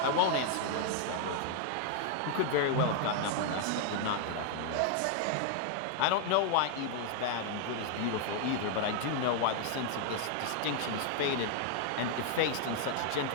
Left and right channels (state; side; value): different; both; correlation 0.00